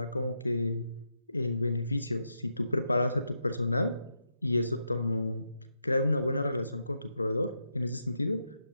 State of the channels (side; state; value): both; inverted; correlation -0.84